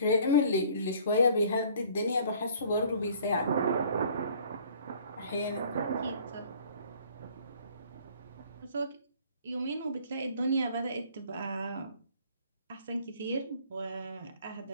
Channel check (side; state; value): both; inverted; correlation -0.54